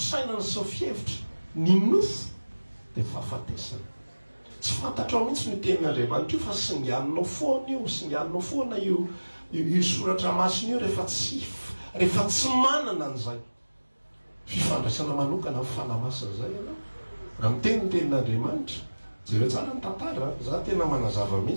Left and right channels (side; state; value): both; inverted; correlation -1.00